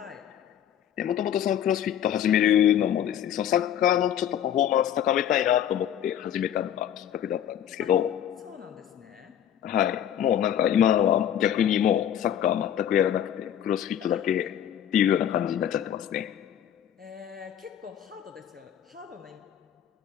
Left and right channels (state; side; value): quieter; right; 10.1 dB